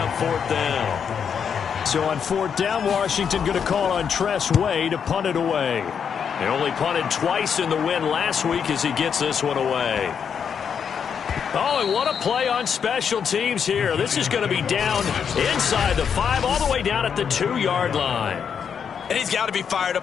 4th down. So on 4th down, Washington going to call on Tress Way to punt it away. He only punted twice in the win last week as he gets this one away. Oh, and what a play on special teams here. This is going to be down inside the 5, all the way down at the 2-yard line. And he's got to be fired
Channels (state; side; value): quieter; right; 7.2 dB